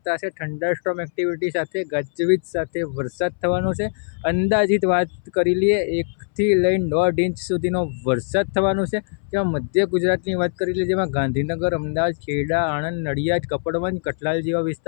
છે. થંડરસ્ટોર્મ એક્ટિવિટી સાથે ગાજવીજ સાથે વરસાદ થવાનો છે. અંદાજિત વાત કરી લઈએ 1 થી લઈને 1.5 ઇંચ સુધીનો વરસાદ થવાનો છે. જેમાં મધ્ય ગુજરાતની વાત કરી લઈએ, જેમાં ગાંધીનગર, અમદાવાદ, ખેડા, આણંદ, નડિયાદ, કપડવંજ, કઠલાલ જેવા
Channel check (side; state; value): right; silent; 62 dB below the other